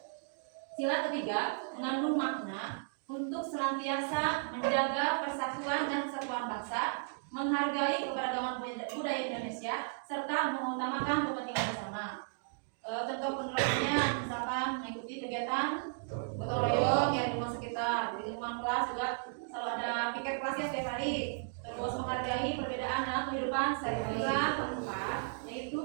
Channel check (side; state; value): left; silent; digital silence